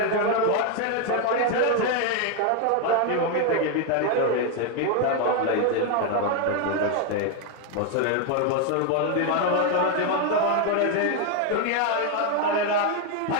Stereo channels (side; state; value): both; different; correlation 0.01